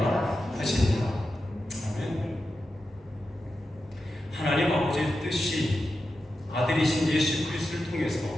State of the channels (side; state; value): both; normal; correlation 0.90